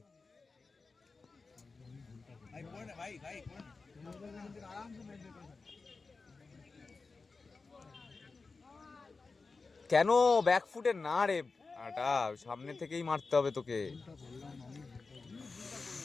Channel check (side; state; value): right; quieter; 4.1 dB